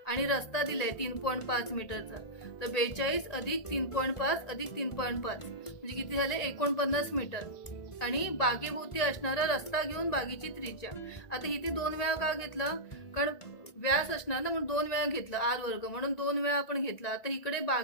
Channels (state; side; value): late; right; 1.9 ms